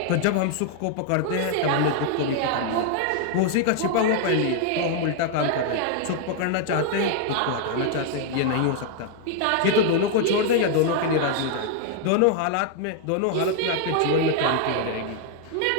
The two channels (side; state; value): both; different; correlation 0.00